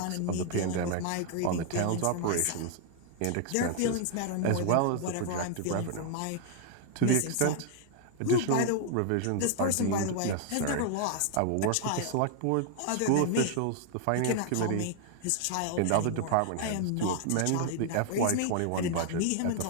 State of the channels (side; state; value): both; different; correlation 0.00